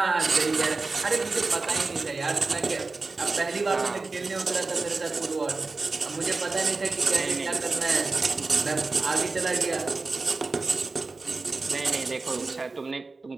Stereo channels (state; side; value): quieter; left; 3.8 dB